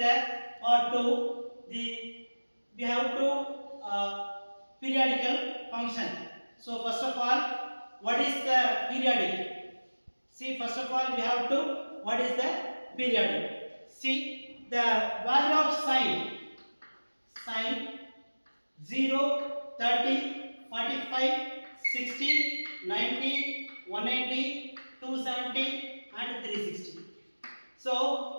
part 2. We have to periodical function. So first of all, what is the periodic? See, first of all we have to what is the periodic? See, the value of sine 0, 30, 45, 60, 90, 180, 270 and 360. So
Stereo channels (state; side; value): inverted; both; correlation -1.00